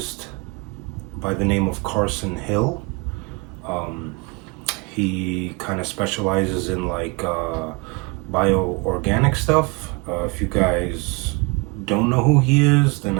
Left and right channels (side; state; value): left; quieter; 29.2 dB